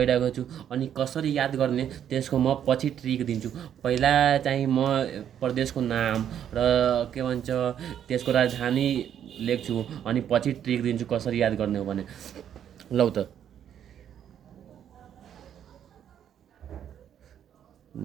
छु। अनि कसरी याद गर्ने त्यसको म पछि ट्रिक दिन्छु। पहिला चाहिँ म प्रदेशको नाम र के भन्छ त्यसको राजधानी लेख्छु अनि पछि ट्रिक दिन्छु कसरी याद गर्ने हो भने। लौ त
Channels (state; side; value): quieter; left; 9.6 dB